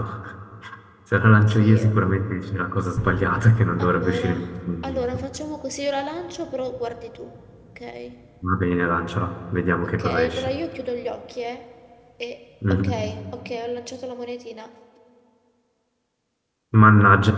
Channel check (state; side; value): identical; both; correlation 1.00